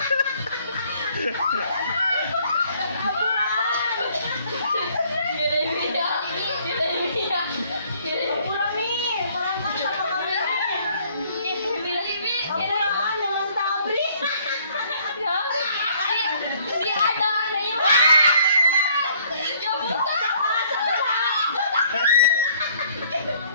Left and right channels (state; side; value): inverted; both; correlation -0.61